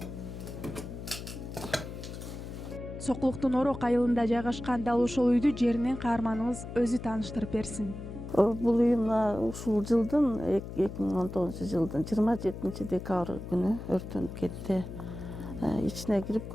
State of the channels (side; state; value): left; noise; hum, 10 dB below the sound